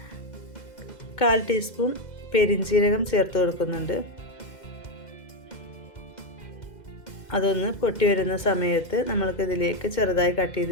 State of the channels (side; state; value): right; late; 2.2 ms